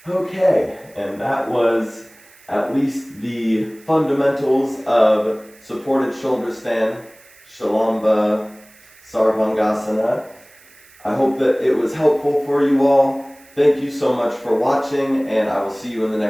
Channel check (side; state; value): right; noise; hiss, 26 dB below the sound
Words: Okay, and that was at least the fundamentals of supported shoulder stand, Salamba Sarvangasana. I hope that it was helpful for you all. Thank you so much for watching, and I will see you in the